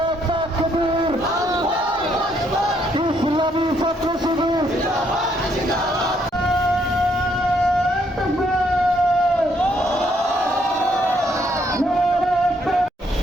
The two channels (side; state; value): both; normal; correlation 0.71